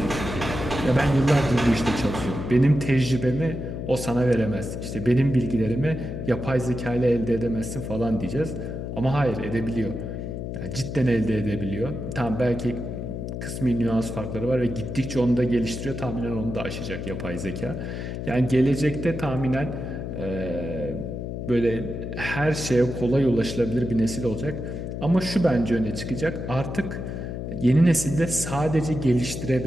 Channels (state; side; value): noise; left; hum, 5 dB below the sound